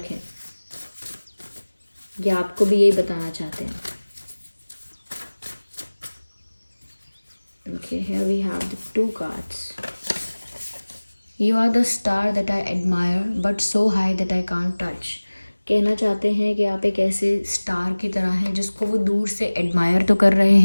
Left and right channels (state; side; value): inverted; both; correlation -1.00